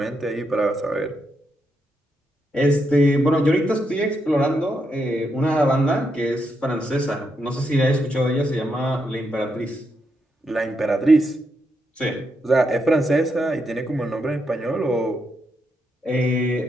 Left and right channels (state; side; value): normal; both; correlation 0.81